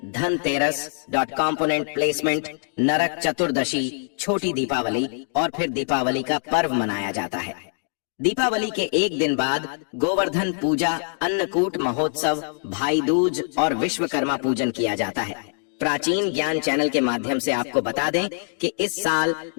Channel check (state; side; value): silent; right; digital silence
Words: धनतेरस, कंपोनेंट प्लेसमेंट, नरक चतुर्दशी, छोटी दीपावली और फिर दीपावली का पर्व मनाया जाता है। दीपावली के एक दिन बाद गोवर्धन पूजा, अन्नकूट महोत्सव, भाई दूज और विश्वकर्मा पूजन किया जाता है। प्राचीन ज्ञान चैनल के माध्यम से आपको बता दें कि इस साल